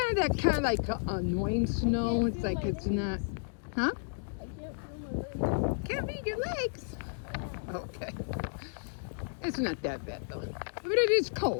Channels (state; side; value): silent; right; digital silence